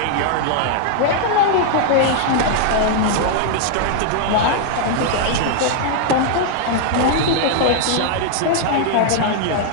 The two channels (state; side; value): different; both; correlation 0.00